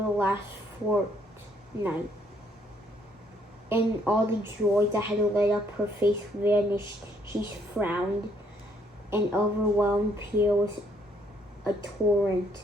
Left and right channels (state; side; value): normal; both; correlation 0.68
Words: the last fortnight, and all the joy that had lit up her face vanished. She frowned, and overwhelmed Pierre with a torrent